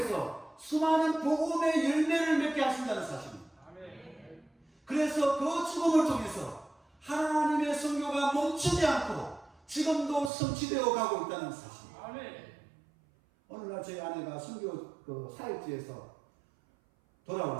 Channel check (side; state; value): left; drops out; at 10.3 s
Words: 수많은 복음의 열매를 맺게 하신다는 사실입니다. 아멘. 그래서 그 죽음을 통해서 하나님의 선교가 멈추지 않고 지금도 성취되어 가고 있다는 사실. 아멘. 어느 날 저희 아내가 선교 그 사역지에서